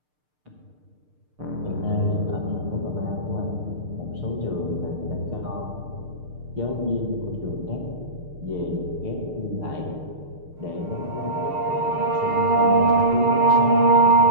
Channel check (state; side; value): late; left; 6.7 ms